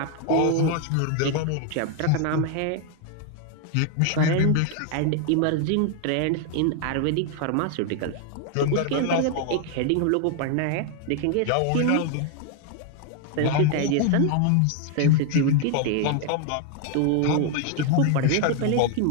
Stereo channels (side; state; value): both; different; correlation 0.00